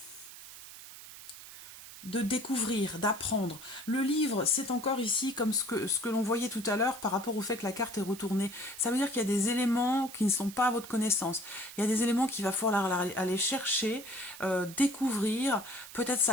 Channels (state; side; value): noise; right; hiss, 15 dB below the sound